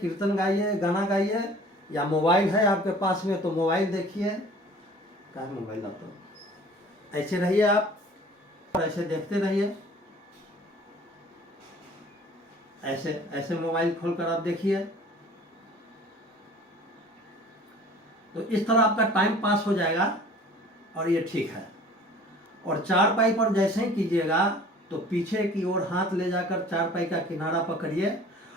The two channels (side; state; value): both; normal; correlation 0.48